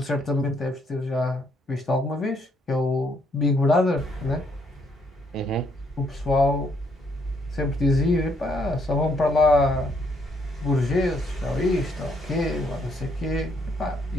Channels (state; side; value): normal; both; correlation 0.71